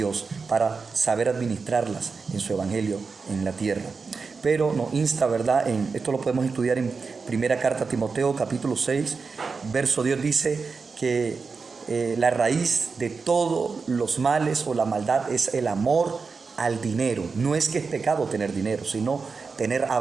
para saber administrarlas en su evangelio en la tierra. Pero nos insta, ¿verdad? Esto lo podemos estudiar en primera carta a Timoteo, capítulo 6, verso 10, dice que la raíz de todos los males o la maldad es el amor al dinero. No es que es pecado tener dinero, sino tener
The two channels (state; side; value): quieter; left; 4.8 dB